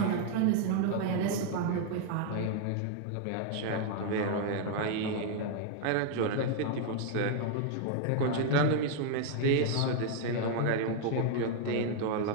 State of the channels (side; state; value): both; different; correlation 0.00